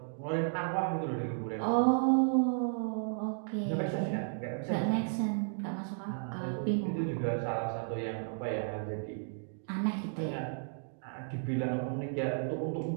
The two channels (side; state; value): left; silent; digital silence